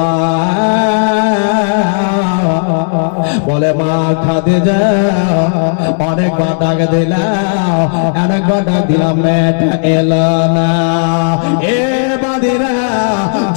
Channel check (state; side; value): silent; right; digital silence